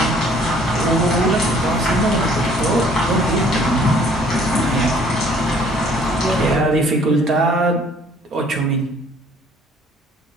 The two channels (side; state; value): both; normal; correlation 0.58